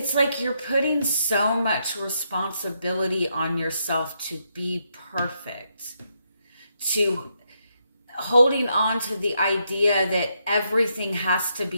like you're putting so much responsibility on yourself to be perfect, to holding on to the idea that everything has to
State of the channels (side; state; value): both; inverted; correlation -0.78